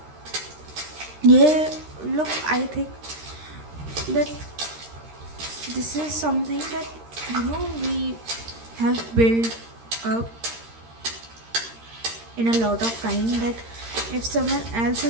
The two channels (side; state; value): left; late; 13 ms